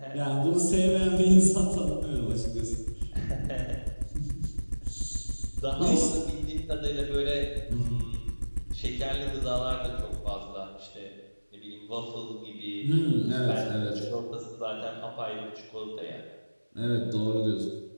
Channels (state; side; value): inverted; both; correlation -1.00